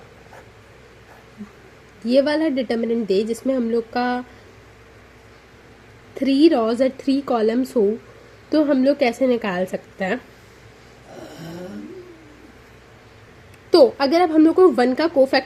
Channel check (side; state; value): both; identical; correlation 1.00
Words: ये वाला डिटर्मिनेंट दे जिसमें हम लोग का 3 रॉज और 3 कॉलम्स हो, तो हम लोग कैसे निकाल सकते हैं. तो अगर अब हम लोग को 1 का